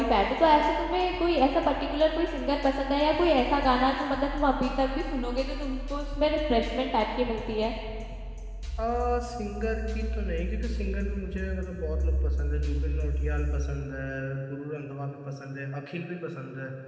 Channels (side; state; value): both; identical; correlation 1.00